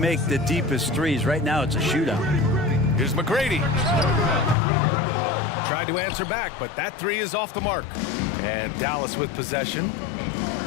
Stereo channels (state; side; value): drops out; right; at 4.5 s